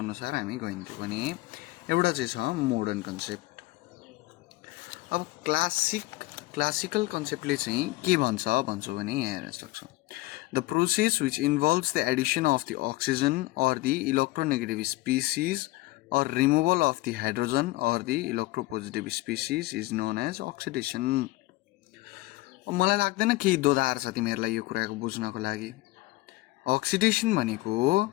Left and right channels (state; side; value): quieter; right; 20.2 dB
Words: हामी गइन्थ्यो भने एउटा चाहिँ छ मोडर्न कन्सेप्ट। अब क्लासिकल कन्सेप्टले चाहिँ के भन्छौँ भने यहाँ हेर्न सक्छौँ the process which involves the addition of the oxygen or the electronegative species or removal of the hydrogen or the electropositive species is known as oxidation. मलाई लाग्दैन केही दोधार छ तिमीहरूलाई यो कुराको बुझ्नको लागि। अक्सिडेसन भनेको